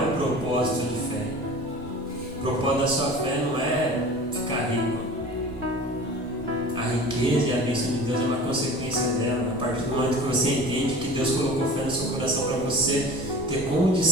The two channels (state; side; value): normal; both; correlation 0.39